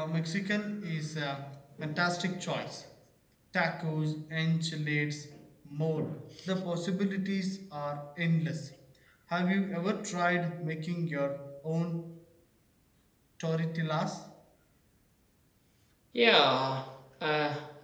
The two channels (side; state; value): both; identical; correlation 1.00